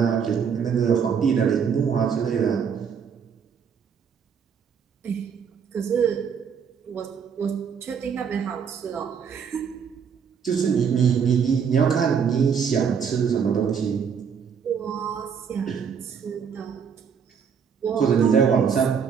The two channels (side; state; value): left; quieter; 6.9 dB